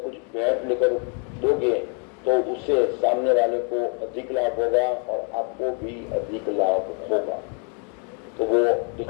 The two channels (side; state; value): right; quieter; 39.6 dB